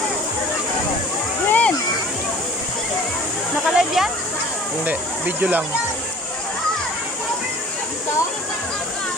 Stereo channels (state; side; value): normal; both; correlation 0.47